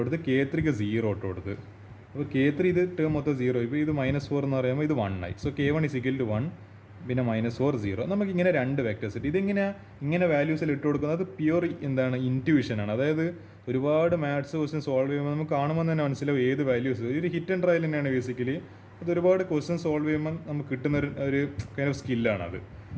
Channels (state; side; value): identical; both; correlation 1.00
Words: K3ക്ക് 0 ഇട്ട് കൊടുത്ത്. അപ്പോൾ K3 ഇത് ടേം മൊത്തം 0 ആയിപ്പോൾ. ഇത് -4 എന്ന് പറയുമ്പോൾ ഇത് 1 ആയി. സോ K1 1 പിന്നെ -4 0. നമുക്കിങ്ങനെ 2 വെക്ടേഴ്സ് കിട്ടി. ഇങ്ങനെ വാല്യൂസിൽ ഇട്ട് കൊടുക്കുന്നത് പ്യുവർ എന്താണ് ഇൻറ്റ്യൂഷനാണ്. അതായത് ഒരുപാട് മാത്സ് ക്വസ്റ്റ്യൻ സോൾവ് ചെയ്യുമ്പോൾ നമുക്ക് കാണുമ്പോൾ തന്നെ മനസ്സിലാവും ഏത് വാല്യൂസ്. ഒരു ഹിറ്റ് ആൻഡ് ട്രയൽ തന്നെയാണ് ബേസിക്കലി. അത് ഒരുപാട് ക്വസ്റ്റ്യൻ സോൾവ് ചെയ്യുമ്പോൾ നമുക്ക് കിട്ടുന്ന ഒരു കൈൻഡ് ഓഫ് സ്കില്ലാണത്.